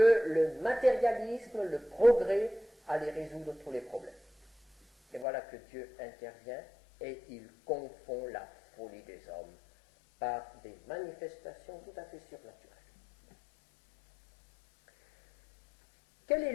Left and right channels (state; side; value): drops out; right; at 5.2 s